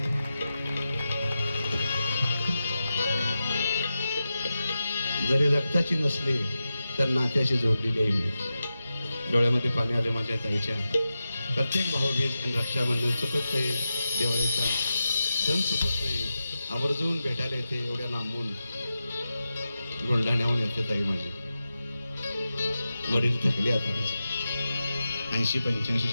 जरी रक्ताची नसली तर नात्याशी जोडलेली आहे मी. डोळ्यामध्ये पाणी आले माझ्या ताईच्या. प्रत्येक भाऊबीज आणि रक्षाबंधन चुकत नाही, दिवाळीचा सण चुकत नाही, आवर्जून भेटायला येते. एवढ्या लांबून बुलढाण्याहून येते ताई माझी. वडील थकले आता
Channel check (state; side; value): inverted; both; correlation -0.91